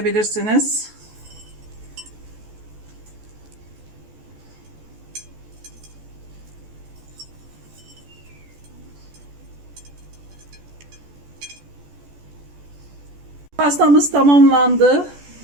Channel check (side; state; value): left; late; 14 ms